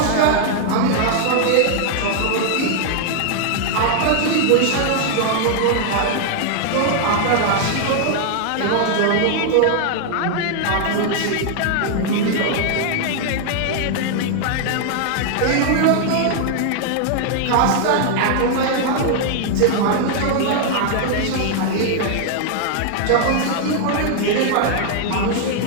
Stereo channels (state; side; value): different; both; correlation 0.00